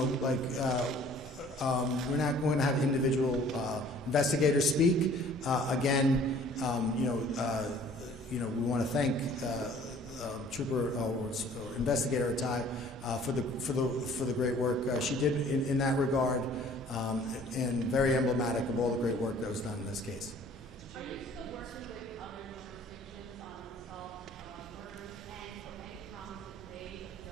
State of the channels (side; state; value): both; normal; correlation 0.53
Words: not going to have individual investigators speak. Again, we want to thank Trooper or Investigator Atai for the great work she did in that regard, and very emblematic of all the great work that was done in this case. Are you still working with other jurisdictions on unsolved murders, and any promises made of